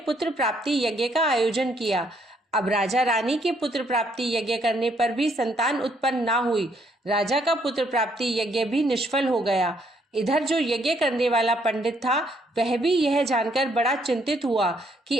प्राप्ति यज्ञ का आयोजन किया। अब राजा रानी के पुत्र प्राप्ति यज्ञ करने पर भी संतान उत्पन्न ना हुई। राजा का पुत्र प्राप्ति यज्ञ भी निष्फल हो गया। इधर जो यज्ञ करने वाला पंडित था वह भी यह जानकर बड़ा चिंतित हुआ कि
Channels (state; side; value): normal; both; correlation 0.69